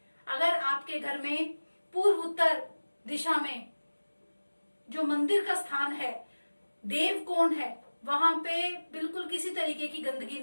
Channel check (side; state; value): both; inverted; correlation -1.00